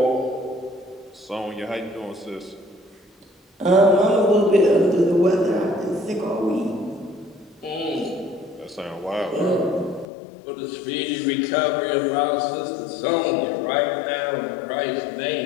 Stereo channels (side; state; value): right; drops out; at 10.1 s